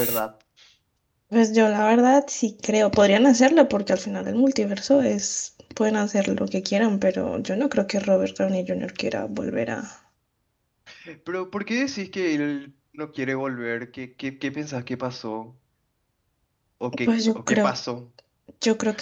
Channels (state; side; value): identical; both; correlation 1.00